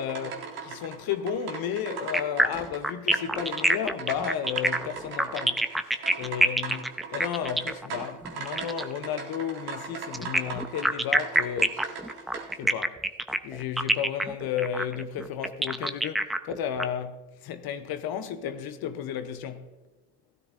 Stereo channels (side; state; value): both; normal; correlation 0.51